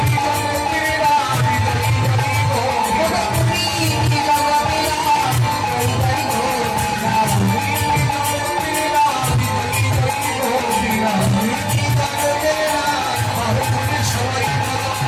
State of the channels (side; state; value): both; identical; correlation 1.00